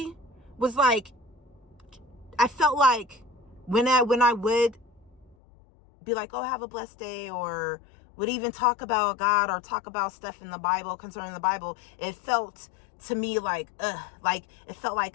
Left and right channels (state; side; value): drops out; right; at 5.4 s